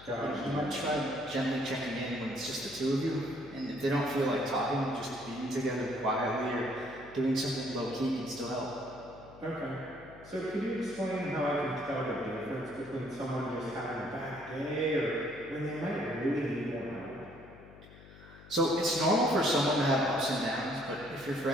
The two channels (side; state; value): left; noise; hum, 19 dB below the sound